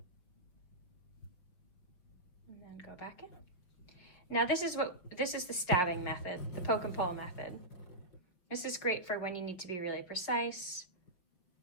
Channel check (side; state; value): right; late; 5.9 ms